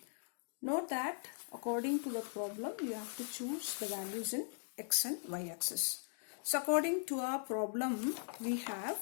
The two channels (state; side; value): silent; right; digital silence